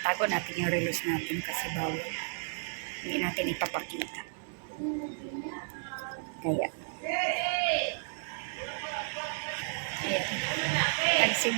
natin yung relos natin kasi bawal. Hindi natin ipapakita. Kaya. Ayan.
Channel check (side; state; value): left; silent; digital silence